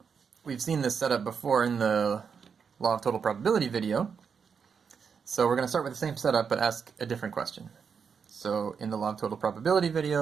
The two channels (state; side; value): quieter; left; 6.3 dB